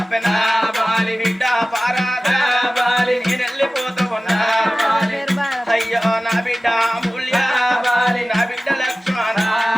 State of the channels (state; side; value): normal; both; correlation 0.96